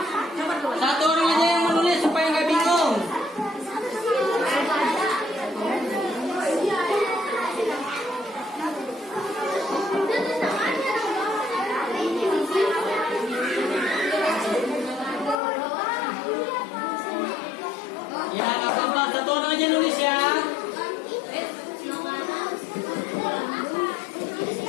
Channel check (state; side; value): drops out; right; at 15.4 s